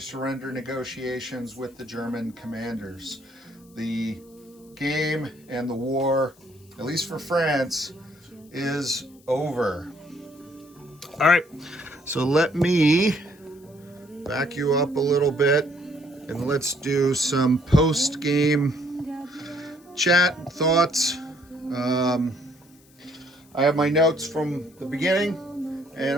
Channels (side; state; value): left; noise; hiss, 29 dB below the sound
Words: negotiations with the German commanders. The game and the war, at least for France, is over. All right, so let me back you up a little bit and let's do some post-game chat thoughts. I have my notes from the beginning, and